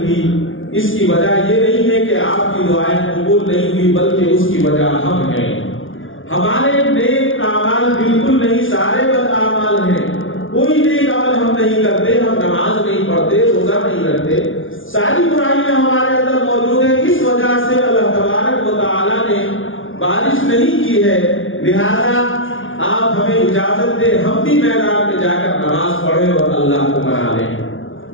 اس کی وجہ یہ نہیں ہے کہ آپ کی دعائیں قبول نہیں ہوئی، بلکہ اس کی وجہ ہم ہیں، ہمارے نیک اعمال بالکل نہیں، سارے بد اعمال ہیں، کوئی نیک عمل ہم نہیں کرتے، ہم نماز نہیں پڑھتے، روزہ نہیں رکھتے، ساری برائیاں ہمارے اندر موجود ہیں، اس وجہ سے اللہ تبارک و تعالیٰ نے بارش نہیں کی ہے، لہذا آپ ہمیں اجازت دیں ہم بھی میدان میں جا کر نماز پڑھیں اور اللہ کو منا لیں،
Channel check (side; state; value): right; late; 0.57 ms